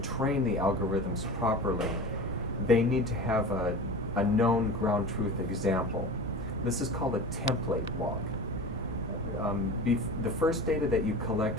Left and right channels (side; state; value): both; normal; correlation 0.33